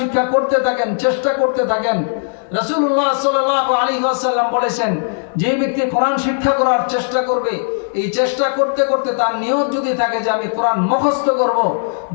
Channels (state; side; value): silent; right; 61 dB below the other